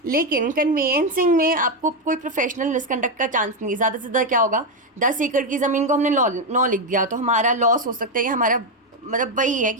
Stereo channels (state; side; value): normal; both; correlation 0.06